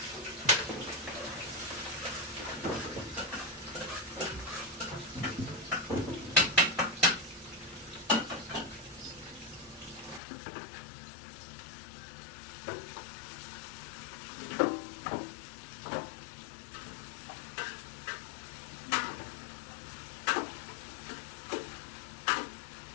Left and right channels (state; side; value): drops out; right; at 10.2 s